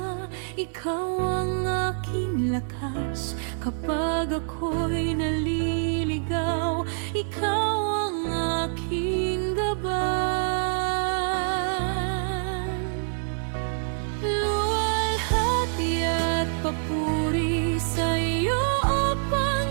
ikaw ang aking lakas. Kapag ako'y naliligaw, ikaw ang aking gabay. Luwalhati at papuri sa iyo, O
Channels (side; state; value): left; silent; 61 dB below the other